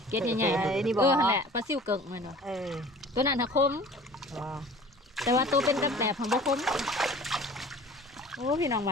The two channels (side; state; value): both; normal; correlation 0.45